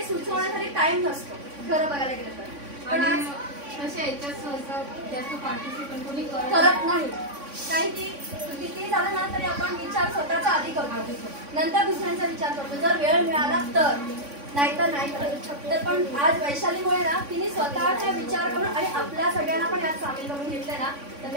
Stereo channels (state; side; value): late; left; 3.5 ms